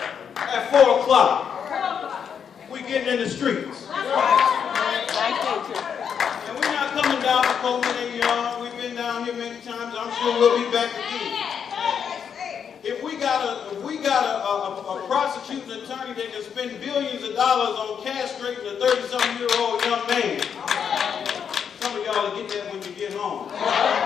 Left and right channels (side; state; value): right; quieter; 7.4 dB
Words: at 4 o'clock, we're getting in the streets. And we're not coming down to Coleman and Young. We've been down here many times. I'm sure we'll be back again. If we got a prosecuting attorney that can spend billions of dollars on castrating a 30-something-year-old young man, some of y'all will get that when you get home.